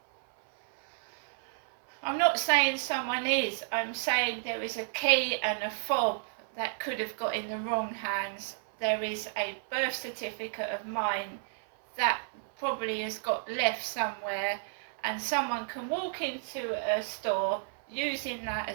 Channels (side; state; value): left; silent; 57 dB below the other